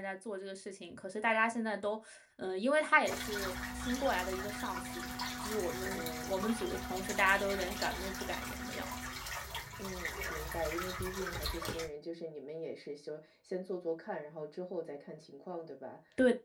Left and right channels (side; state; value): both; identical; correlation 1.00